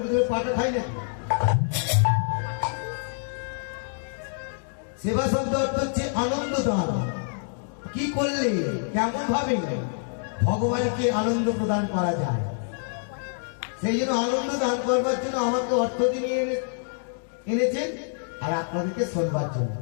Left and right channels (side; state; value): right; silent; digital silence